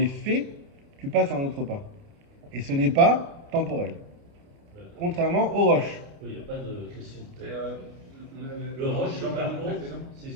faits, tu passes à un autre repas. Et ce n'est pas temporel. Contrairement au roche. Oui, il n'y a pas de question de Et, tête. on avait- Le roche, dans par le contre, précédent. c'est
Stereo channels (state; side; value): late; left; 29 ms